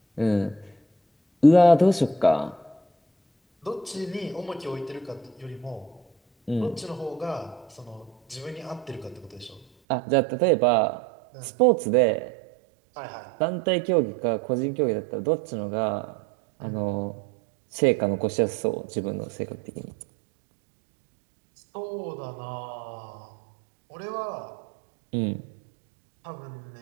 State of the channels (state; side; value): drops out; left; at 9.7 s